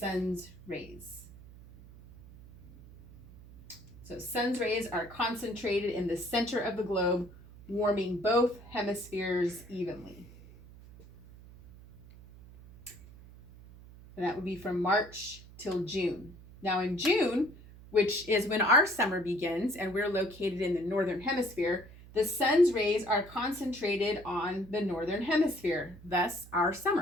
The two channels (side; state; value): right; noise; hum, 19 dB below the sound